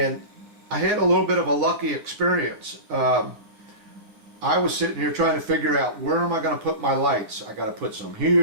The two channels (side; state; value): left; late; 9.5 ms